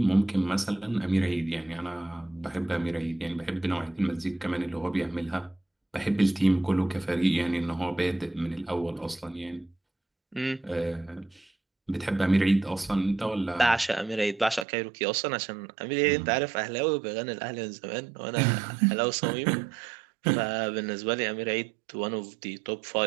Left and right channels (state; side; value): drops out; left; at 14.7 s